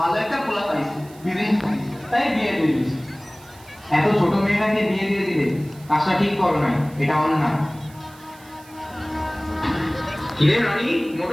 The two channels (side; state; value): right; noise; hiss, 24 dB below the sound